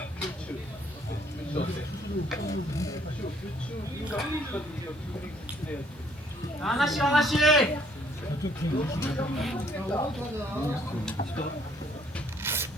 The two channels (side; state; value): both; normal; correlation 0.64